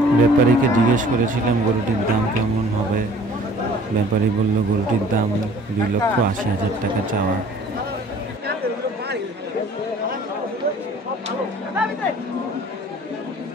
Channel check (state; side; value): normal; both; correlation 0.51